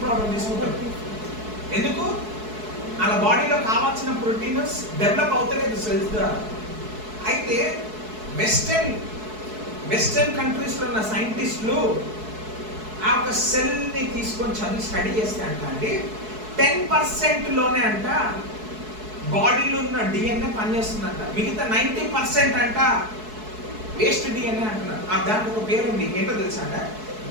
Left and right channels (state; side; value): late; left; 4.7 ms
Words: ప్రోడక్ట్ తీసుకుంటారు. ఎందుకు? అలా బాడీలో కావాల్సిన ప్రోటీన్స్ డెవలప్ అవుతలేదు సెల్స్ ద్వారా. అయితే వెస్టర్న్ కంట్రీస్లో ఉన్న సైంటిస్టులు ఆ ఒక సెల్ని తీసుకొని స్టడీ చేస్తే అంట అండి 10%లోనే అంట బాడీలో ఉన్న డిఎన్ఏ పనిచేస్తుందంట. మిగతా 90% అంట వేస్ట్ డిఎన్ఏ అంటున్నారు. దానికి ఒక పేరు ఉంది, ఏంటో తెలుసా అంట?